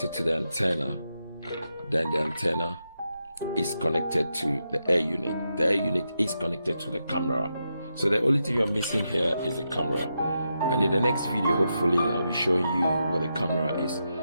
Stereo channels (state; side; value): inverted; both; correlation -0.85